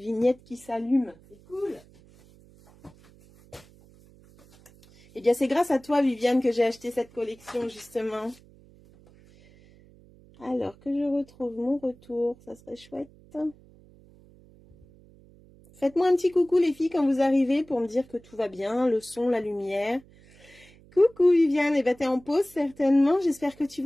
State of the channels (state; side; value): noise; right; hum, 26 dB below the sound